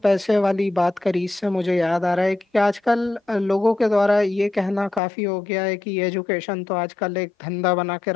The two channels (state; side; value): drops out; right; at 5.0 s